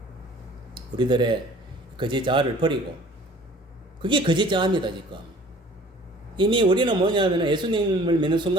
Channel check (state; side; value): normal; both; correlation 0.50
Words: 우리들의 거짓 자아를 버리고 그게 거짓 자아입니다. 지금 이미 우리는 뭐냐면 예수님을 믿는